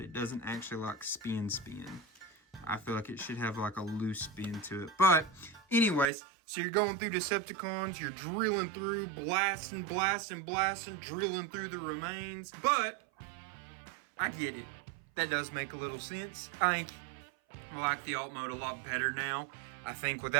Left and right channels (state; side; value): drops out; left; at 6.1 s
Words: doesn't actually like spin. I feel like it should have like a loose spin to it. But anyways, so you're going through Decepticons, you're drilling through, blasting, drilling through the remains. But I get it. That does make a little sense. I like the alt mode a lot better now. I think